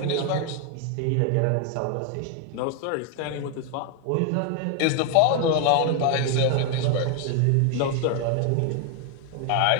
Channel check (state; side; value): different; both; correlation 0.01